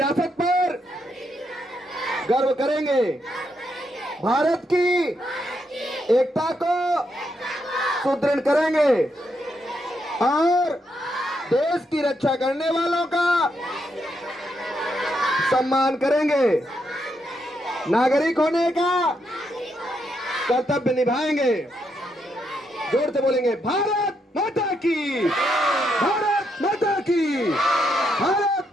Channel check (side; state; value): both; normal; correlation 0.79